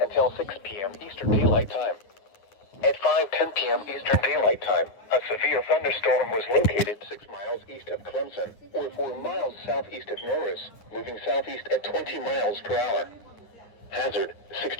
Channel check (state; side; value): late; right; 9.6 ms